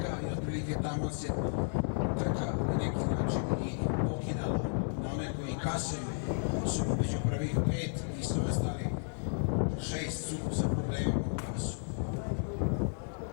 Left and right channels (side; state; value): right; silent; 56 dB below the other